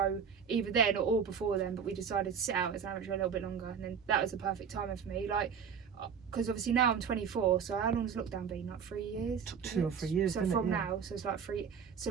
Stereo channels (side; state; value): left; quieter; 7.0 dB